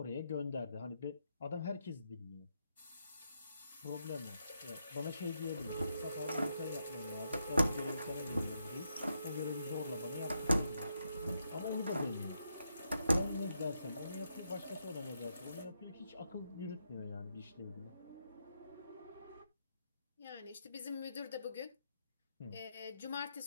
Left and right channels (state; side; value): inverted; both; correlation -0.81